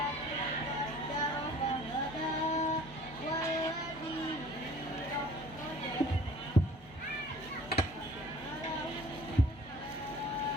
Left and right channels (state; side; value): normal; both; correlation 0.50